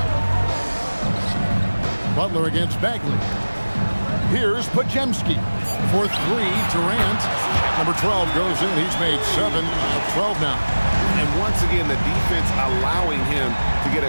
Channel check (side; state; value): both; inverted; correlation -1.00